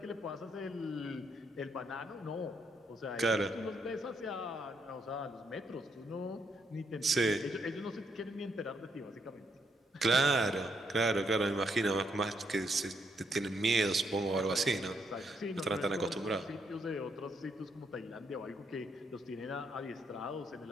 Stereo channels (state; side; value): normal; both; correlation 0.75